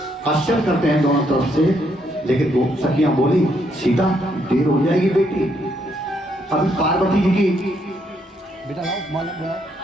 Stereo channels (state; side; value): normal; both; correlation 0.74